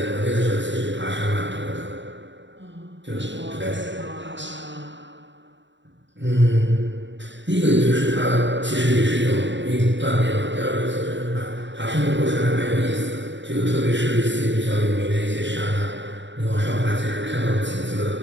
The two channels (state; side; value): late; left; 0.53 ms